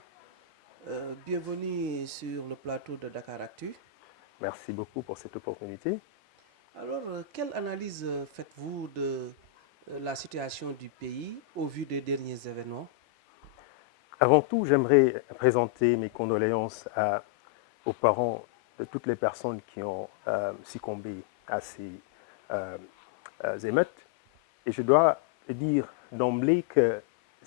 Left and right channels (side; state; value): right; quieter; 11.1 dB